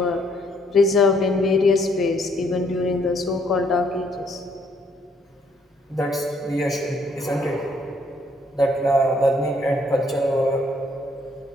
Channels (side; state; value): both; normal; correlation 0.68